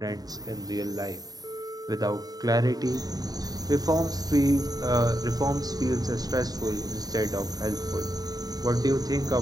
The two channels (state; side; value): late; left; 0.18 ms